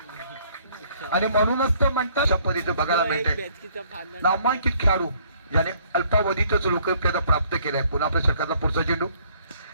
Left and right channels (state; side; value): inverted; both; correlation -0.63